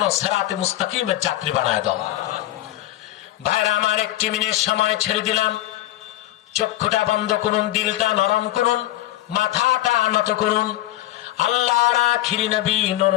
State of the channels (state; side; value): quieter; right; 15.3 dB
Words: সিরাতে মুস্তাকিমের যাত্রী বানায় দাও। ভাইরা আমার, একটি মিনিট সময় ছেড়ে দিলাম। চক্ষুটা বন্ধ করুন, দিলটা নরম করুন, মাথাটা নত করুন। আল্লাহর আখিরি নবী নূর